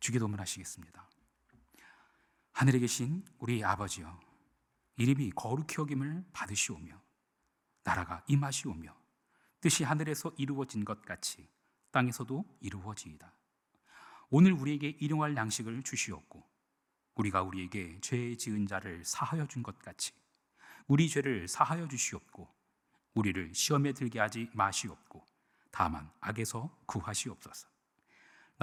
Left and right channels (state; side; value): identical; both; correlation 1.00